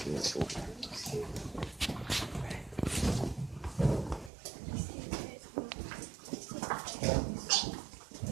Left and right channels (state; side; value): drops out; left; at 4.3 s